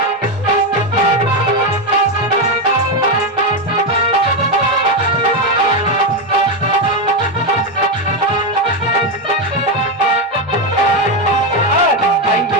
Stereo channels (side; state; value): both; normal; correlation 0.09